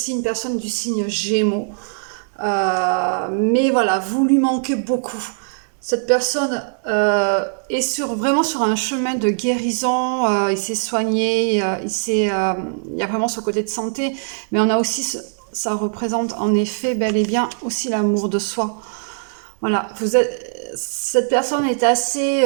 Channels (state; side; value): silent; left; 64 dB below the other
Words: une personne du signe Gémeaux. Mais voilà, vous lui manquez beaucoup. Cette personne est vraiment sur un chemin de guérison. Il s'est soigné, il y a vraiment ce côté de santé. Mais on a aussi, ça représente en effet bel et bien aussi l'amour de soi. Voilà, cette personne est assez